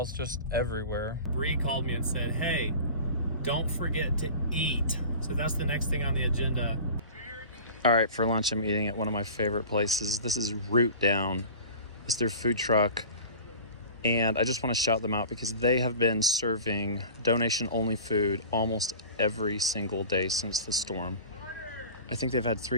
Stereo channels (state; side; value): inverted; both; correlation -0.38